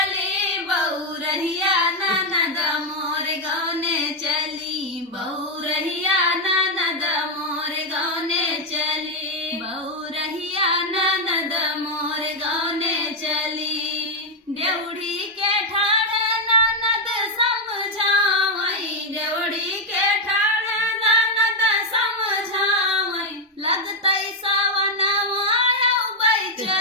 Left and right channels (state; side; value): normal; both; correlation 0.02